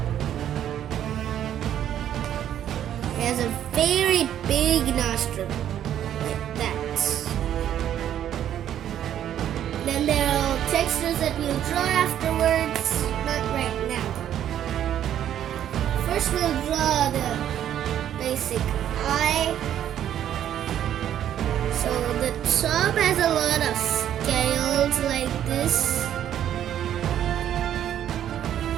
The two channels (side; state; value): left; quieter; 10.7 dB